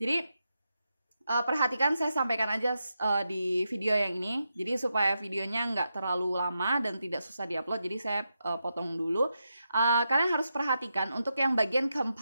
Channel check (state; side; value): inverted; both; correlation -0.86